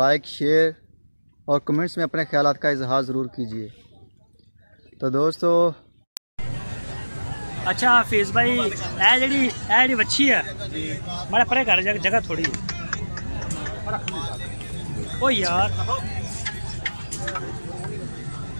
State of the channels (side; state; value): both; inverted; correlation -1.00